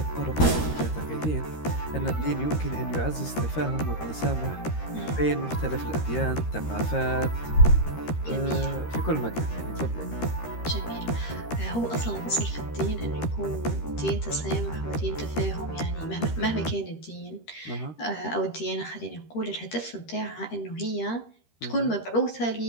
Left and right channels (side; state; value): right; late; 13 ms